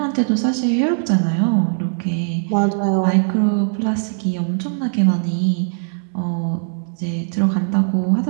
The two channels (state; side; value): silent; left; digital silence